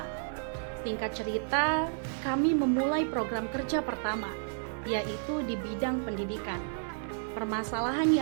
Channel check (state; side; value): silent; left; digital silence